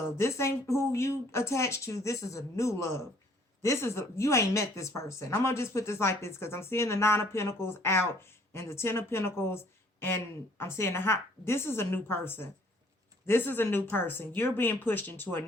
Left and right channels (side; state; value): both; normal; correlation 0.60